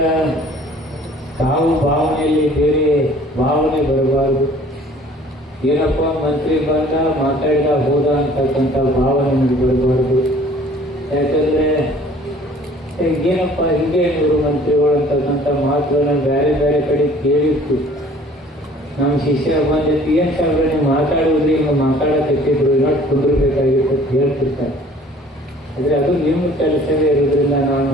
ತಾವು ಭಾವನೆಯಲ್ಲಿ ಬೇರೆ ಭಾವನೆ ಬರಬಾರದು. ಏನಪ್ಪ ಮಂತ್ರಿ ಬಂದ ಮಾತಾಡಿದ ಹೋದ ಅಂತಕ್ಕಂಥ ಭಾವನೆ ನಮಗೆ ಬರಬಾರ್ದು. ಯಾಕಂದರೆ ಏನಪ್ಪ ಹಿಂಗೆ ಇವರು ಮಂತ್ರಿಗಳು ಅಂತಕ್ಕಂಥ ಮಾತುಗಳನ್ನ ಬೇರೆ ಬೇರೆ ಕಡೆ ಕೇಳಿತ್ತು. ನಮ್ಮ ಶಿಷ್ಯರ ಬಂದಿತ್ತು, ಏನು ಸಾಹೇಬ್ರೆ ನೀವು ಮಾತಾಡೋದ್ರಿ, ಹಿಂಗೆ ಮಾತಾಡಕತ್ತಿದ್ರು, ಇನ್ನೊಟ್ಟು ಕುಂದಿರ್ಬೇಕಾಗಿತ್ತು ಅಂತ ಹೇಳ್ತಿರ್ತಾರೆ. ಆದರೆ ಅದು ನಿಮ್ಮ ಕೆಲಸವೇ ಇರೋದ್ರಿಂದ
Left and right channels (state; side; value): normal; both; correlation 0.52